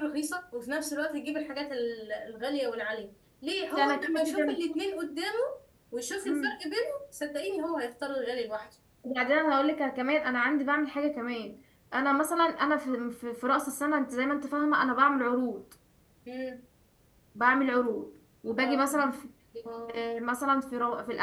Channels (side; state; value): both; identical; correlation 1.00